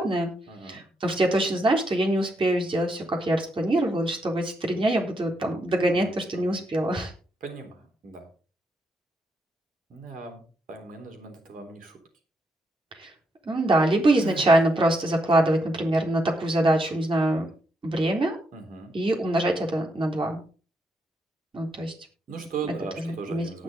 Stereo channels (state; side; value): normal; both; correlation 0.79